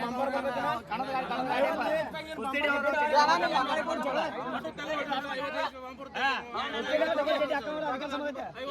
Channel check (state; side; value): identical; both; correlation 1.00